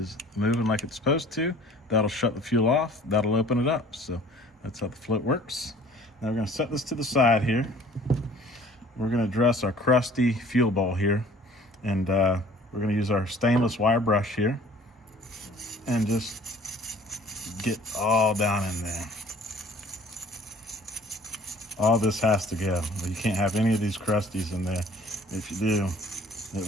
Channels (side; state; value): both; normal; correlation 0.52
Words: moving like it's supposed to. That'll shut the fuel off. That'll open it up. So that's how the float works. Now we're going to set this to the side here. We're going to address our crusty fuel bowl here. And we're going to use our stainless wire brush here. And just get all down in there. All this has to go. You can't have any of these crusties in there. If you do,